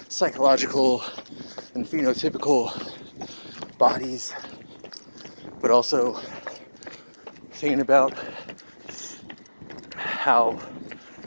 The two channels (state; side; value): inverted; both; correlation -1.00